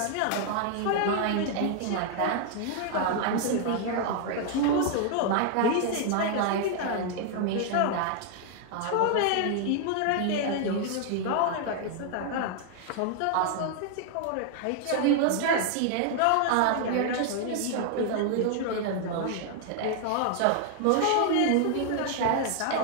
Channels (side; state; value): both; different; correlation 0.00